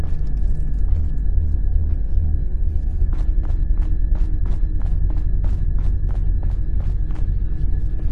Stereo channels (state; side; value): identical; both; correlation 1.00